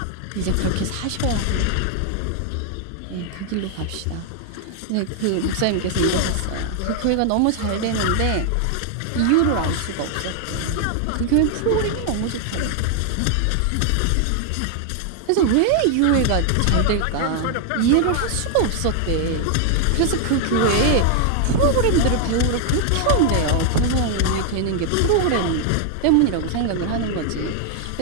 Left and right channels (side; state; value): both; different; correlation 0.00